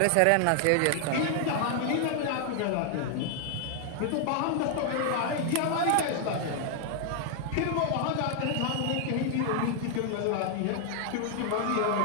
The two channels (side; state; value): both; different; correlation 0.00